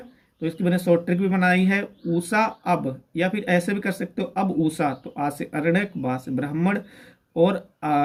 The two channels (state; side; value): identical; both; correlation 1.00